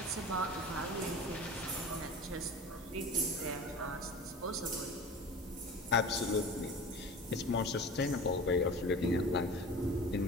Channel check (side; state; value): both; normal; correlation 0.36